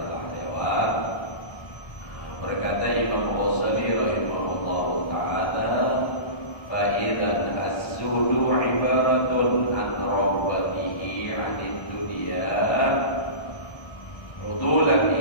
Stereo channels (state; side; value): late; right; 1.3 ms